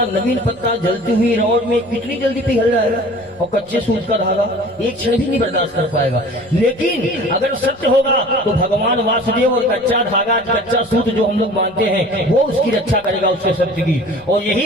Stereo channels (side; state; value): right; noise; rumble, 29 dB below the sound